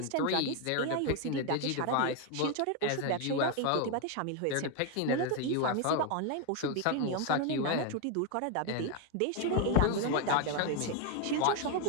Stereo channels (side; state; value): both; different; correlation 0.01